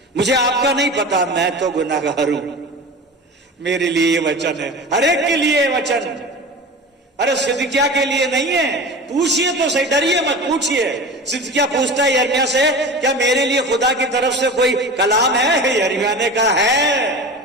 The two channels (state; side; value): normal; both; correlation 0.33